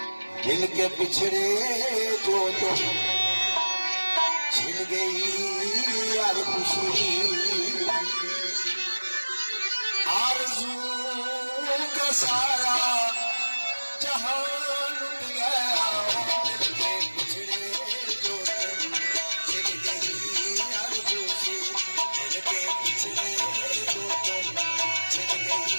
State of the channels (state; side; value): inverted; both; correlation -1.00